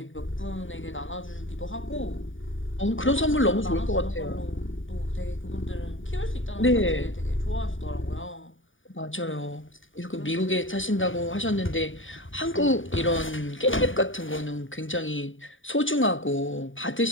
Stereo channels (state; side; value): late; right; 0.57 ms